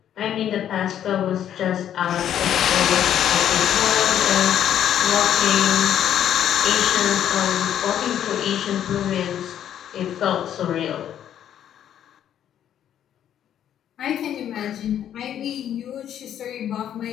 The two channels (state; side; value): quieter; right; 10.2 dB